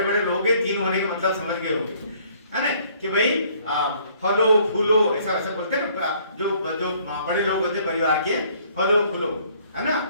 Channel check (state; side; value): inverted; both; correlation -0.61